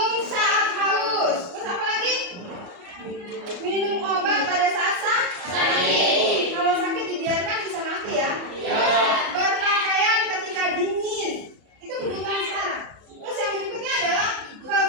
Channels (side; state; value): left; late; 34 ms